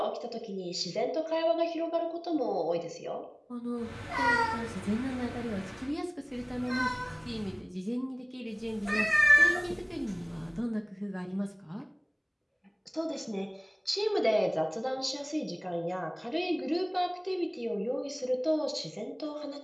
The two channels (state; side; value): identical; both; correlation 1.00